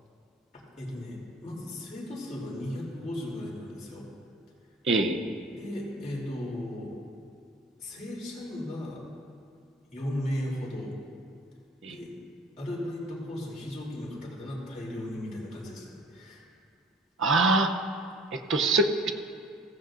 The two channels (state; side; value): normal; both; correlation 0.50